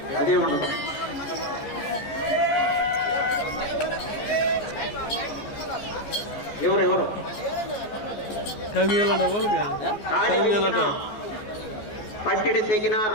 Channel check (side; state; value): right; late; 14 ms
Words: అదే ఉండదు. ఎవరెవరు పట్టిడి తెగినా,